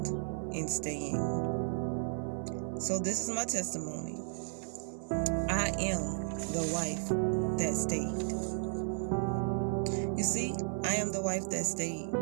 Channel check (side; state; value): left; silent; 55 dB below the other